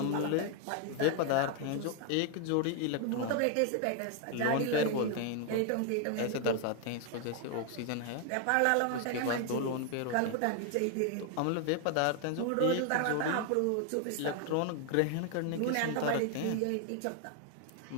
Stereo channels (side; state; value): both; different; correlation 0.00